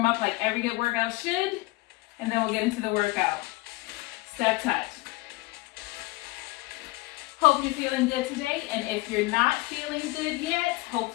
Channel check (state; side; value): quieter; right; 21.8 dB